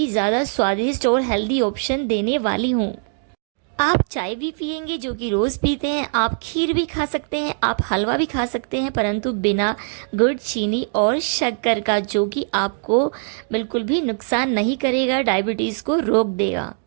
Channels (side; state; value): left; silent; digital silence